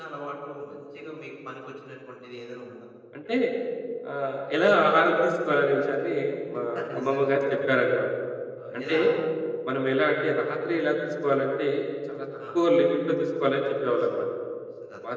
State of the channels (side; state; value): both; identical; correlation 1.00